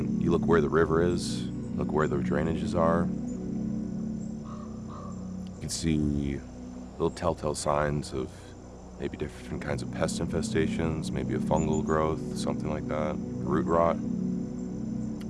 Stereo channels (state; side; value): identical; both; correlation 1.00